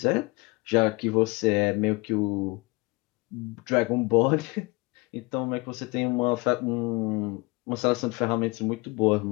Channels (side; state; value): right; quieter; 25.2 dB